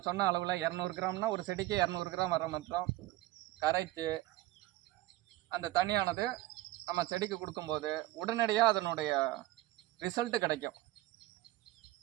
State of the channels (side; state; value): left; quieter; 17.4 dB